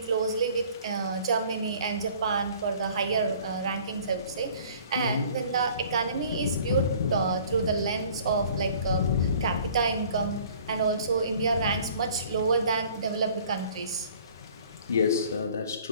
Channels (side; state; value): both; inverted; correlation -0.52